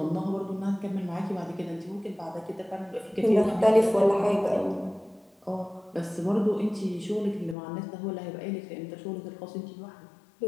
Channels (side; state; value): right; drops out; at 7.6 s